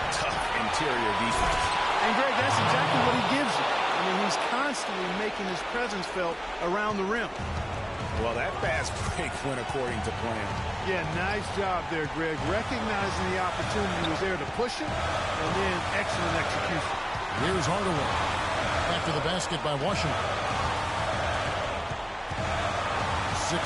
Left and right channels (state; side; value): identical; both; correlation 1.00